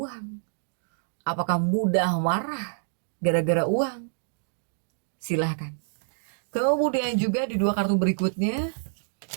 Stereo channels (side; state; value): left; silent; digital silence